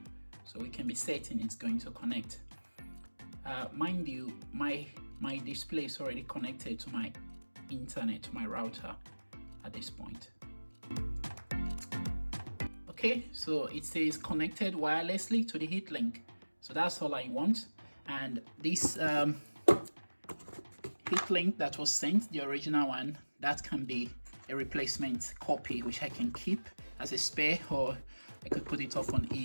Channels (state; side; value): inverted; both; correlation -1.00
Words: So we can be certain it's going to connect. Mind you, my display is already connected to my internet, to my router at this point. Okay, so it says connected wirelessly to the heat link. So that's all I want. And this heat link that was sent, the original one, that can be a replacement copy which I can keep as a spare, or I could put it up on